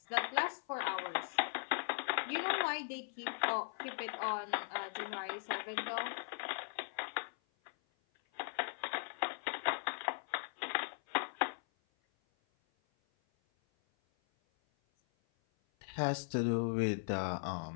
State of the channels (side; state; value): right; silent; 52 dB below the other